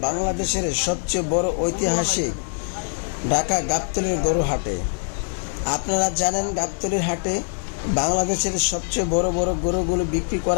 বাংলাদেশের সবচেয়ে বড় ঐতিহাসিক ঢাকা গাবতলীর গরু হাটে। আপনারা জানেন গাবতলীর হাটে বাংলাদেশের সবচেয়ে বড় বড় গরুগুলো বিক্রি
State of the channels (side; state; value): right; silent; 63 dB below the other